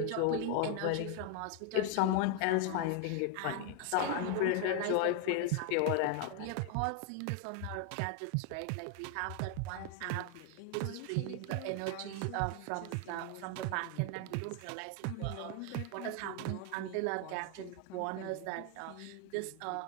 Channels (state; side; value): different; both; correlation 0.01